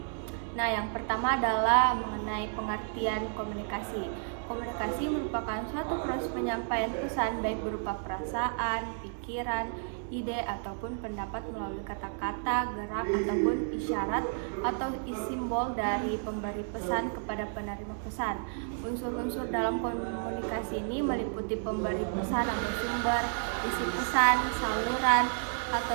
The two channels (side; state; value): left; silent; 57 dB below the other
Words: Nah, yang pertama adalah mengenai pengertian komunikasi. Komunikasi merupakan suatu proses penyampaian pesan baik berupa perasaan, pikiran, ide, ataupun pendapat melalui kata-kata, gerak, ataupun isyarat atau simbol dari pemberi pesan kepada penerima pesan. Unsur-unsur dalam komunikasi ini meliputi pemberi pesan atau sumber, isi pesan, saluran,